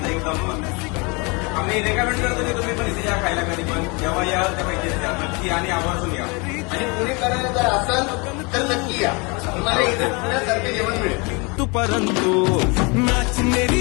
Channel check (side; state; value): right; quieter; 29.5 dB